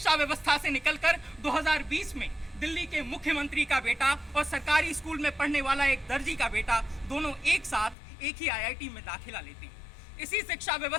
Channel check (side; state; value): right; drops out; at 8.0 s